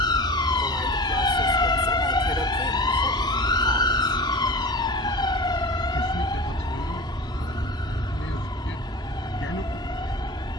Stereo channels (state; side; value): normal; both; correlation 0.34